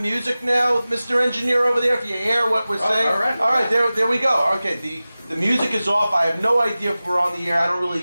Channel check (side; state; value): both; inverted; correlation -0.96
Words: now, Mr. Engineer over there, if you hear what we're saying. All right. All right, there we go. Okay, the music is off. I have no idea if we're on the air. I don't